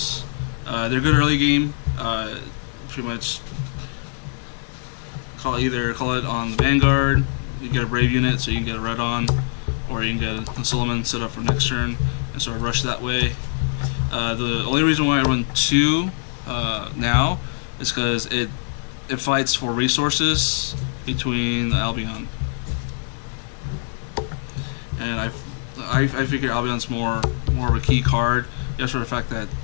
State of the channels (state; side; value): silent; right; 63 dB below the other